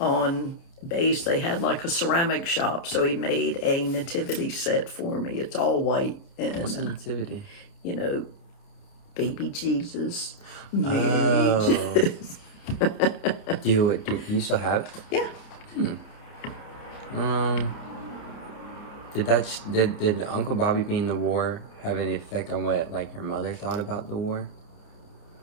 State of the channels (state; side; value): late; right; 29 ms